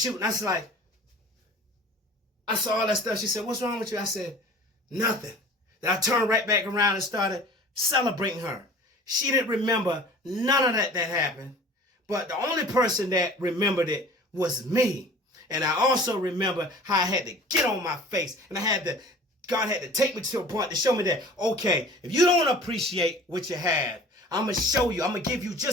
I was like, I saw all that stuff. She said, what's wrong with you? I said, nothing. Then I turned right back around and started celebrating her. She didn't remember none of that happened. But the only person that remembered it was me. And I also remember how I had to get on my face. And God had to take me to a point to show me that, okay, if you don't appreciate what you have, I'm going to show you. I'm going to give you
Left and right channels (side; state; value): both; normal; correlation 0.45